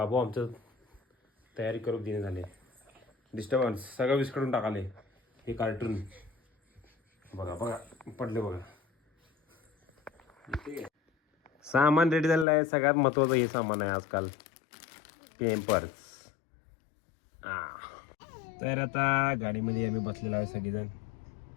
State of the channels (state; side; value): drops out; right; at 12.5 s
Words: आमचं तयारी करून देणे झाले. डिस्टर्बन्स सगळं विस्कडून टाकाले. हे कार्टून बघा बघा पडले बघा. सामान रेडी झालेलं आहे. सगळ्यात महत्त्वाचं हे सामान आहे आजकाल, पेम्पर्स. तर आता गाडीमध्ये आम्ही बसलेलो आहे सगळेजण.